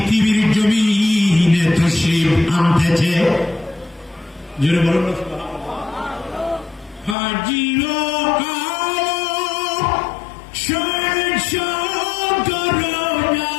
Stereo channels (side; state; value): right; drops out; at 7.2 s